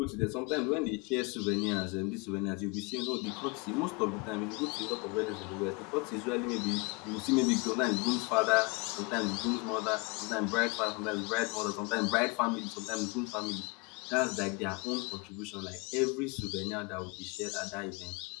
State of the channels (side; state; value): right; quieter; 29.2 dB